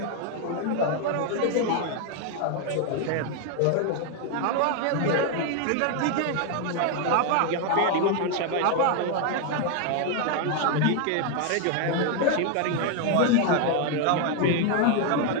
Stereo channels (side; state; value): both; different; correlation 0.01